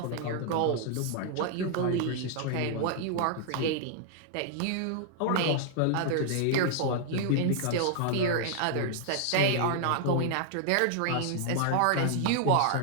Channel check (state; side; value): different; both; correlation 0.00